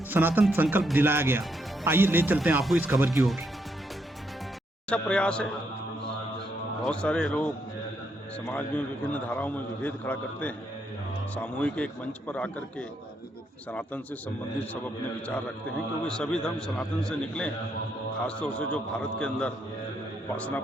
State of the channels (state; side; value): normal; both; correlation 0.76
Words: सनातन संकल्प दिलाया गया। आइए ले चलते हैं आपको इस खबर की ओर। अच्छा प्रयास है। बहुत सारे लोग समाज में विभिन्न धाराओं में विभेद खड़ा करते हैं। सामूहिक एक मंच पर आकर के सनातन से संबंधित सब अपने विचार रखते हैं, क्योंकि सभी धर्म सनातन से निकले हैं। खासतौर से जो भारत के अंदर उपासना